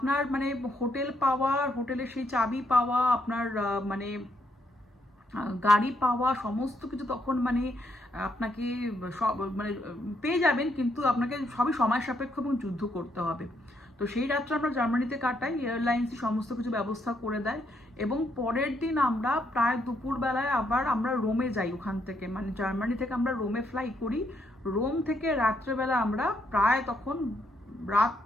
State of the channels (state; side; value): normal; both; correlation 0.75